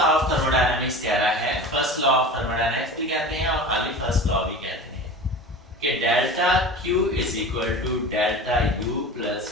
ऑफ थर्मोडायनामिक्स कह रहा है, फर्स्ट लॉ ऑफ थर्मोडायनामिक्स भी कहते हैं और खाली फर्स्ट लॉ भी कहते हैं कि delta Q is equal to delta U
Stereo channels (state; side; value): normal; both; correlation 0.35